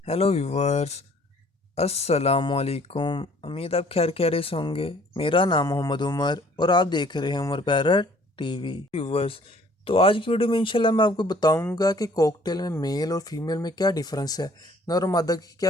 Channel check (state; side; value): normal; both; correlation 0.57